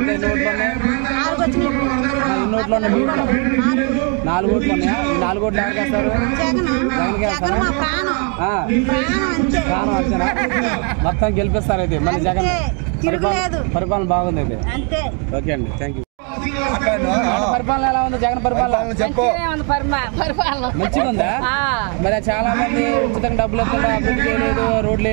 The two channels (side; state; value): left; quieter; 37.7 dB